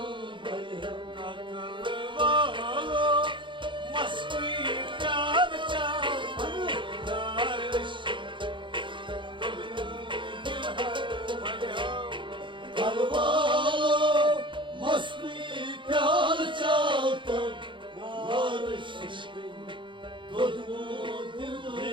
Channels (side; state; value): left; late; 0.24 ms